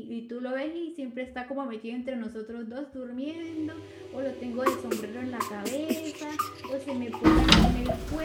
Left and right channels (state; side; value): identical; both; correlation 1.00